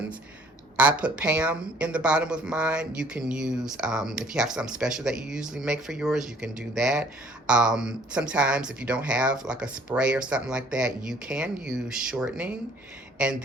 I put Pam in the bottom of mine. You can use, if you have something special that you usually make for yours, you can do that. Sometimes if you don't have like a spray or something like that, you can use shortening and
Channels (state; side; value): normal; both; correlation 0.57